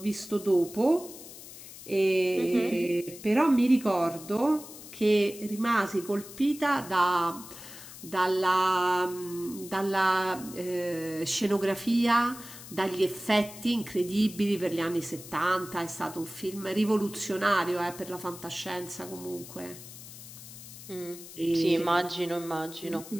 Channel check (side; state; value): left; noise; hiss, 15 dB below the sound